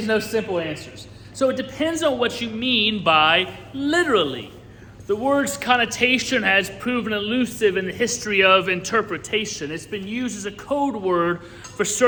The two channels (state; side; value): identical; both; correlation 1.00